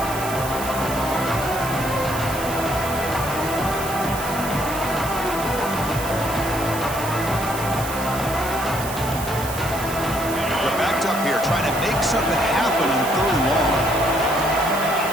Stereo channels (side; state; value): right; noise; hiss, 10 dB below the sound